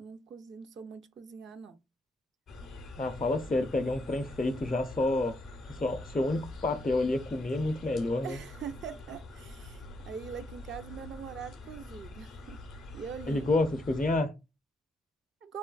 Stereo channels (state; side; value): normal; both; correlation 0.77